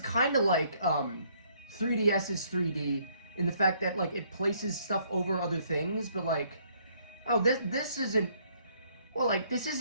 of like 3DS's 3D in the fact that, like, it places stuff over other things, but, like, oh, this isn't, well, like, this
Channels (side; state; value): both; inverted; correlation -0.66